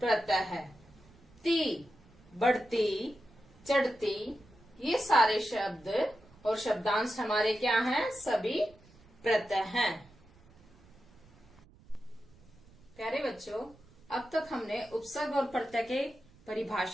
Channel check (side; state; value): right; noise; rumble, 26 dB below the sound